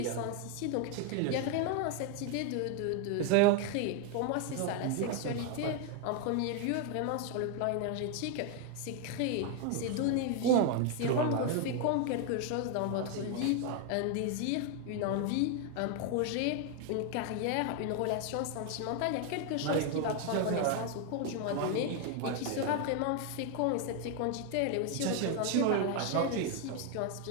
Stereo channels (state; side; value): different; both; correlation 0.01